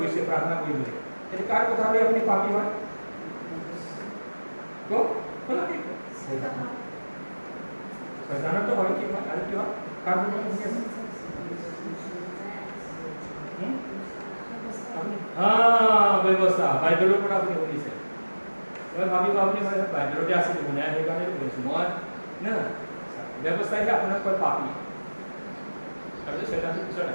প্ৰাৰ্থনা কৰিবলৈ তেতিয়া কাৰ কথা লৈ আপুনি পাপী হয় শয়তানতো হয় কি হয় আৰু কি হয় কাৰ কথা শুনি আছে ব্যৱস্থা বাইবেলৰ পৰা আপুনি শুনিছে মই ভাবিব আপুনি বাইবেলতে আছিলোঁ মানে সেইকাৰণে কৈছোঁ মই না ব্যৱস্থাইহে আপোনাক কয় পাপী তাৰপিছত শয়তানটো পিছত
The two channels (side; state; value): both; inverted; correlation -1.00